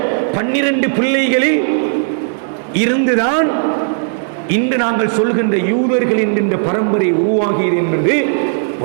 12 பிள்ளைகளில் இருந்துதான் இன்று நாங்கள் சொல்கின்ற யூதர்கள் என்கின்ற பரம்பரை உருவாகியது என்பது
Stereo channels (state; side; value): silent; left; digital silence